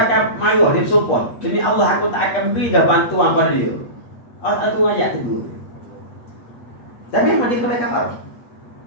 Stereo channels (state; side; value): late; right; 8.4 ms